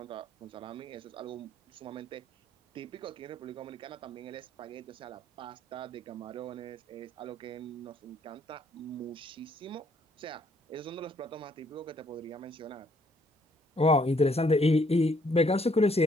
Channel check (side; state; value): both; normal; correlation 0.67